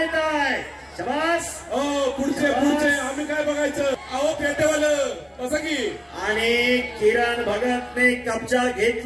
आहे। शाबास। पुढचे पुढचे आम्ही काय बघायचं, अहो पेटेवालं असं की। आणि किरण भगतने कब्जा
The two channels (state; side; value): identical; both; correlation 1.00